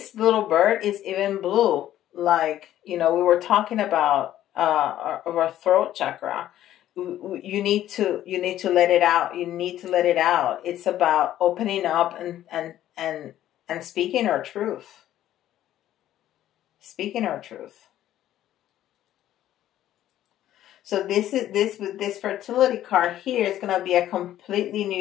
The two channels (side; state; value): right; quieter; 12.6 dB